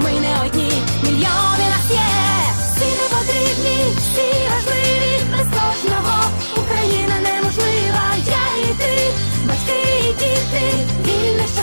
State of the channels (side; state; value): both; inverted; correlation -1.00